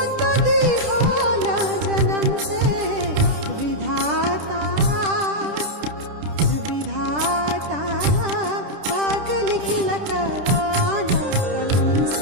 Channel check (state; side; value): late; left; 10 ms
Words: दिहाला जन्म से विधाता विधाता भाग लिखल कवाना कलम